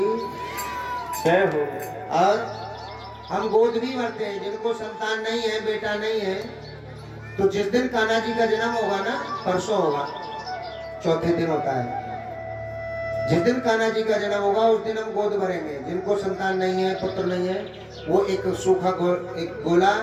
जय हो। और हम गोद भी भरते हैं, जिनको संतान नहीं है, बेटा नहीं है, तो जिस दिन कान्हा जी का जन्म होगा ना, परसों होगा, चौथे दिन होता है, जिस दिन कान्हा जी का जन्म होगा उस दिन हम गोद भरेंगे। जिनको संतान नहीं है, पुत्र नहीं है, वो एक सूखा एक गोला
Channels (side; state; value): both; identical; correlation 1.00